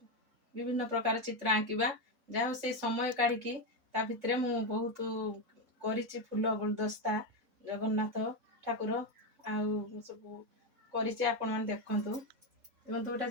विभिन्न प्रकार चित्र आंकिबा जहाँ से समय काढ़ी ता भितर मु बहुत करिछि फूल गुलदस्ता जगन्नाथ ठाकुर आउ सब करिछि आपण माने देखंतु देखंतु गोटा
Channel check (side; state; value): left; late; 2.8 ms